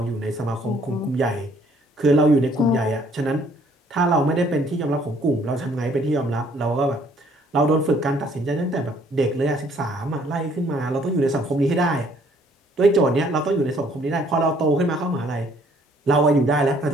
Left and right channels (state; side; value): normal; both; correlation 0.62